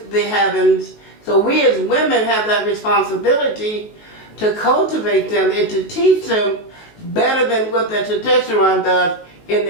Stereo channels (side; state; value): right; late; 19 ms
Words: the heavens. So we as women have that responsibility to cultivate them and to teach them better than what the testosterone does in